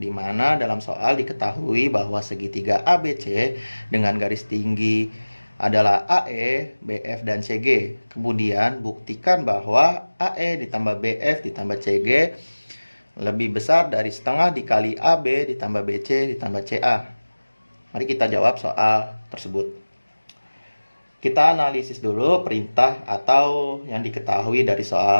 mana dalam soal diketahui bahwa segitiga ABC dengan garis tinggi adalah AE, BF, dan CG. Kemudian buktikan bahwa AE ditambah BF ditambah CG lebih besar dari setengah dikali AB ditambah BC ditambah CA. Mari kita jawab soal tersebut. Kita analisis dulu perintah atau yang diketahui dari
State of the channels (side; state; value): both; inverted; correlation -1.00